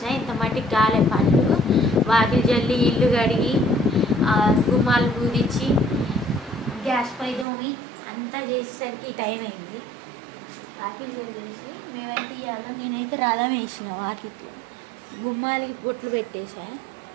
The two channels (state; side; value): drops out; left; at 7.5 s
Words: ఇంత మట్టికి గాలే పళ్ళు వాకిలి జల్లి ఇల్లు కడిగి గుమ్మాలు పూరించి గ్యాస్ పై దోమి అంతా చేసేసరికి టైం అయింది. వాకిలి జల్లేసి మేమైతే ఇవాళ నేనైతే రథం వేసిన వాకిట్లో, గుమ్మాలకి బొట్లు పెట్టేసా,